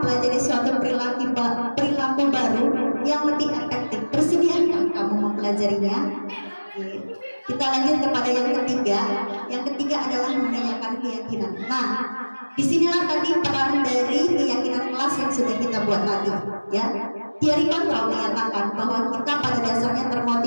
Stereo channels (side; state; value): both; inverted; correlation -1.00